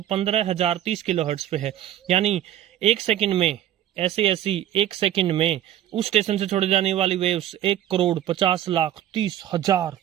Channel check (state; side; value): quieter; left; 11.9 dB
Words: 15,030 किलोहर्ट्ज पे है। यानी 1 सेकंड में ऐसे ऐसी 1 सेकंड में उस स्टेशन से छोड़ी जाने वाली वेव्स 1,50,30,30,000